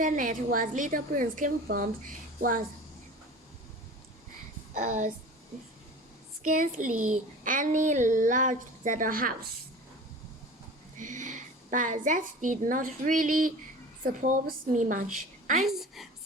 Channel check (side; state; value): both; normal; correlation 0.38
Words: where little prince came from was scarcely any larger than a house. But that did not really surprise me much.